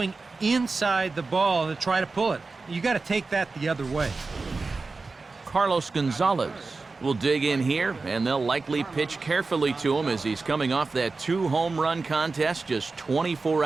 inside the ball and try to pull it. You got to take that the other way. Carlos Gonzalez will dig in here, and they'll likely pitch carefully to him as he's coming off that 2-home run contest just 24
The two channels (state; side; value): quieter; left; 3.9 dB